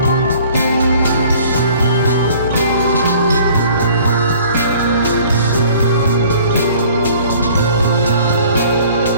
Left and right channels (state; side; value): inverted; both; correlation -0.52